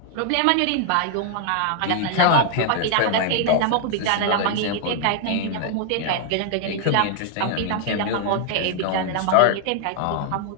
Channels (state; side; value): different; both; correlation 0.00